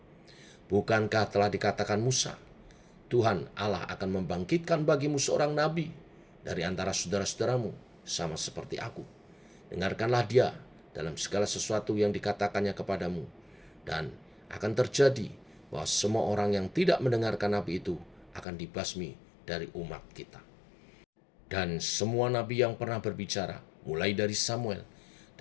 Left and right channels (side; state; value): right; drops out; at 18.4 s